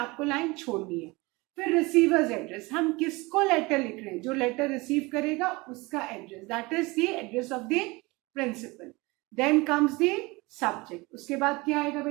लाइन छोड़नी है। फिर रिसीवर्स एड्रेस, हम किसको लेटर लिख रहे हैं, जो लेटर रिसीव करेगा उसका address, that is the address of the principal. Then comes the subject, उसके बाद क्या आएगा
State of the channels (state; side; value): quieter; left; 23.7 dB